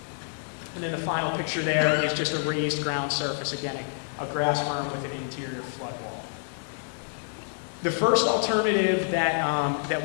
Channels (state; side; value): silent; right; digital silence